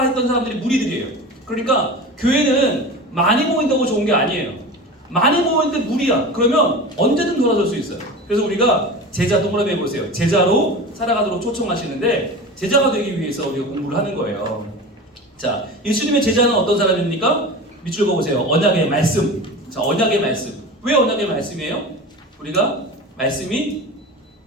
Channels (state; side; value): normal; both; correlation 0.32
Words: 했던 사람들이 무리들이에요. 그러니까 교회는 많이 모인다고 좋은 게 아니에요. 많이 모이는데 무리야. 그러면 언제든 돌아설 수 있어요. 그래서 우리가 제자 동그라미 해보세요. 제자로 살아가도록 초청하시는데 제자가 되기 위해서 우리가 공부를 하는 거예요. 자, 예수님의 제자는 어떤 사람입니까? 밑줄 그어보세요. 언약의 말씀. 자, 언약의 말씀. 왜 언약의 말씀이에요? 우리가 말씀이